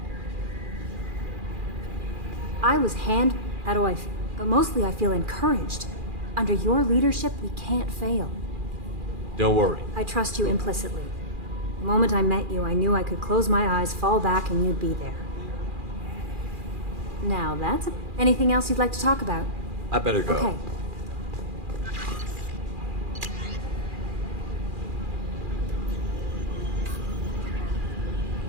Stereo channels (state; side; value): late; left; 2.4 ms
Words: I was how do I feel? But mostly I feel encouraged. Under your leadership, we can't fail. Don't worry. I trust you implicitly. The moment I met you, I knew I could close my eyes, fall back, and you'd be there. Now that's anything else you'd like to talk about? I better go. Okay.